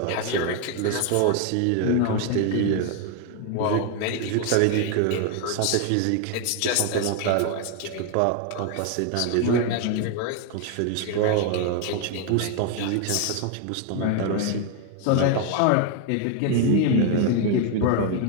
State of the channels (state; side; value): different; both; correlation 0.01